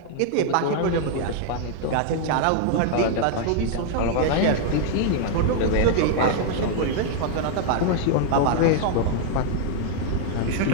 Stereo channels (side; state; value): both; different; correlation 0.00